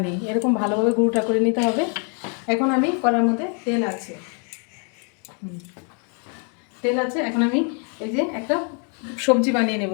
নেই, এরকম ভালোভাবে গুঁড়োটা করে নিতে হবে। এখন আমি কড়ার মধ্যে তেল আছে, এখন আমি এই যে একটা সবজি বানিয়ে নেব,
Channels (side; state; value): right; quieter; 39.8 dB